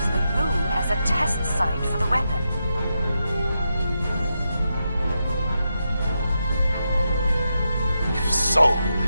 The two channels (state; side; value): inverted; both; correlation -0.86